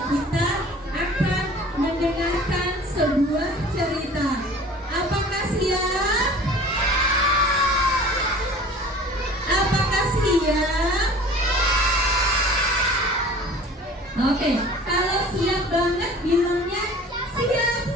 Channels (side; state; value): both; normal; correlation 0.44